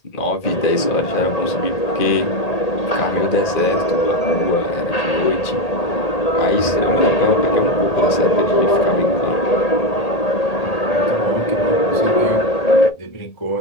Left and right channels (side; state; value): right; late; 1.8 ms